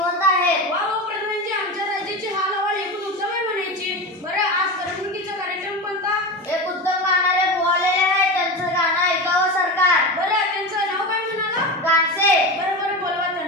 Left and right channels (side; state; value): both; normal; correlation 0.23